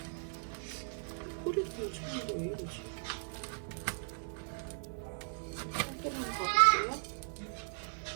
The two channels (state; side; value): silent; left; digital silence